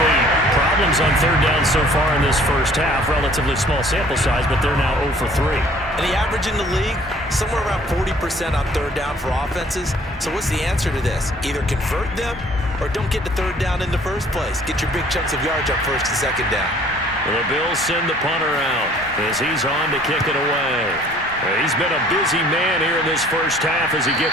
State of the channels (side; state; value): both; normal; correlation 0.55